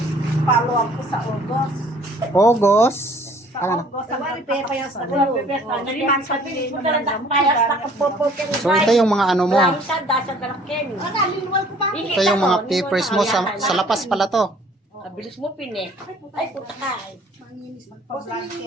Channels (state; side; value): normal; both; correlation 0.56